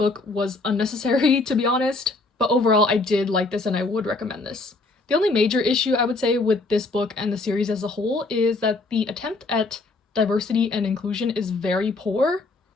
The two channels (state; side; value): quieter; right; 3.3 dB